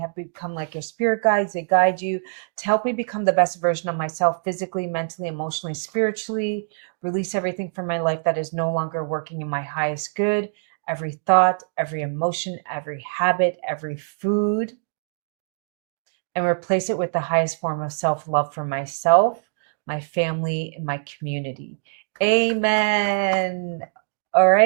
become like your spirit guides. They guide you to help me become the best version of myself, physically, mentally, emotionally, spiritually. Release everything from my life that is no longer working in my highest good. Every thought, every emotion, every habit, every food. And replace it with the highest form of self-love for myself, my family, and my community. Amen. All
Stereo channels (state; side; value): silent; left; digital silence